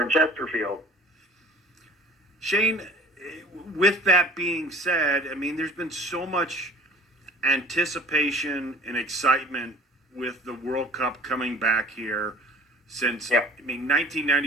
in Chesterfield. Shane, with that being said, there's been so much anticipation and excitement with the World Cup coming back here since,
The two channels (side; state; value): both; normal; correlation 0.45